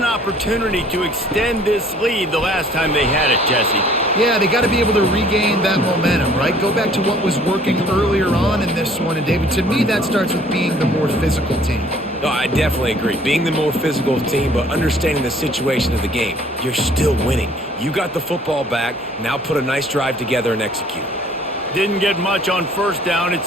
opportunity to extend this lead the last time they had it, Jesse. Yeah, they got to be able to regain that momentum, right? Go back to what was working earlier on in this one. And, David, to me, that starts with being the more physical team. No, I definitely agree. Being the more physical team, but understanding the situation of the game. You're still winning. You got the football back. Now put a nice drive together and execute. Didn't get much on 1st down.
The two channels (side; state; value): both; normal; correlation 0.56